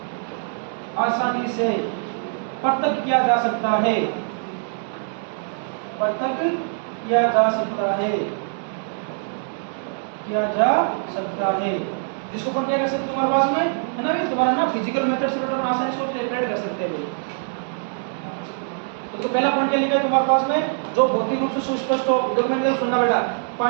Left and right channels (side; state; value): left; silent; 63 dB below the other